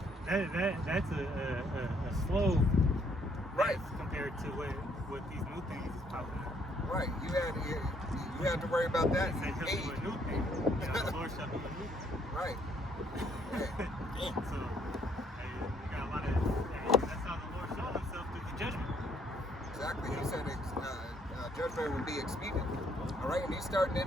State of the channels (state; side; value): normal; both; correlation 0.67